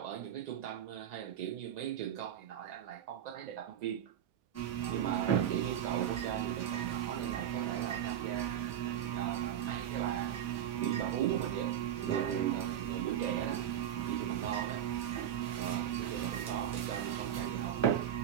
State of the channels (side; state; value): left; quieter; 10.2 dB